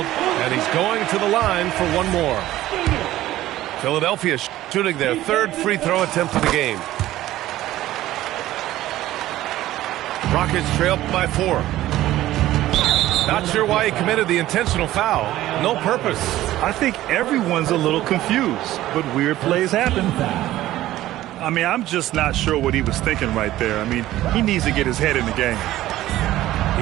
and he's going to the line for one more. Philadelphia shooting their 3rd free throw attempt of the game. Rockets trail by 4. Not sure why he committed the intentional foul. No purpose. I think everyone's a little confused, but weird plays happen. I mean, I'm just not sure what he was thinking right there. I mean, he needs to get his head in the game.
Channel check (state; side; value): quieter; left; 14.9 dB